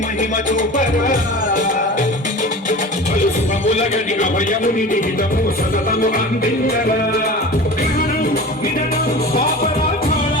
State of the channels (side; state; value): both; normal; correlation 0.35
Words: మహిమ చూపరా పలు శుభముల గణిక భయముని నిహితము సతతము అందించరా పాపరాధాళ